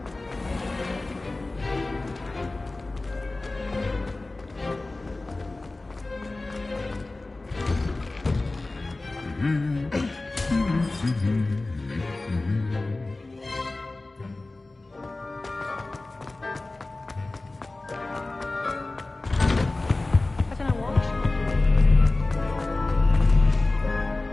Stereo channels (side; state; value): right; quieter; 3.1 dB